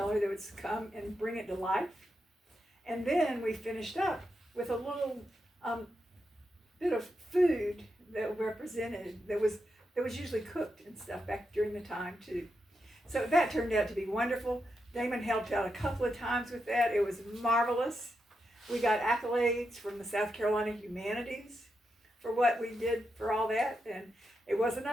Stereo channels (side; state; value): both; normal; correlation 0.85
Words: that would come and bring it to life. And then we finished up with a little bit of food that represented, that was usually cooked and stuff back during the time too. So that turned out to be wonderful. Damon helped out a couple of times with that. It was marvelous. We got accolades from the South Carolina Humanities for what we did for all that. And it wasn't